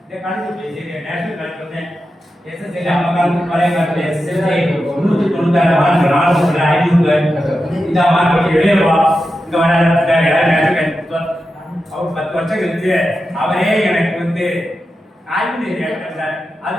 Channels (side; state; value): both; normal; correlation 0.90